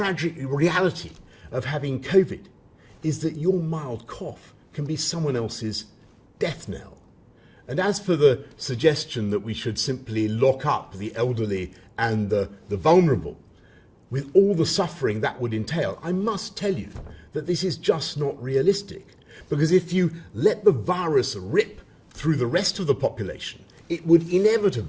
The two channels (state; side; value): identical; both; correlation 1.00